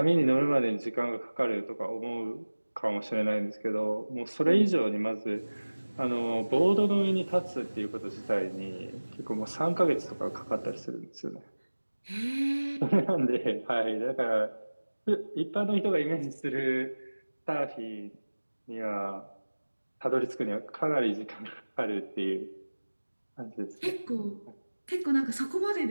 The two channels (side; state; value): both; inverted; correlation -1.00